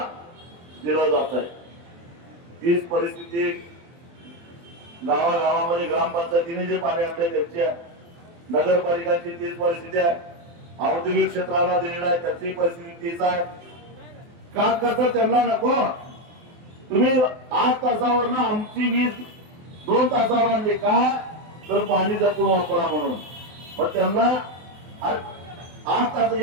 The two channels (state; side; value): late; left; 23 ms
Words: दिलं जात आहे. तीच परिस्थिती गावागावामध्ये ग्रामपंचायतीने जे पाणी आणले त्यांची आहे, नगरपालिकांची तीच परिस्थिती आहे, औद्योगिक क्षेत्राला दिलेला आहे त्याची परिस्थिती तीच आहे. का कसं त्यांना नको? तुम्ही 8 तासावर ना आमची वीज 2 तासावर आणली का? तर पाणी जपून वापरा म्हणून. मग त्यांना 8 तास